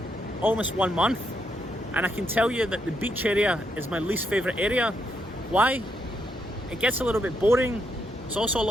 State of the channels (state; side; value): normal; both; correlation 0.78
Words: almost 1 month, and I can tell you that the beach area is my least favourite area. Why? It gets a little bit boring. There's also a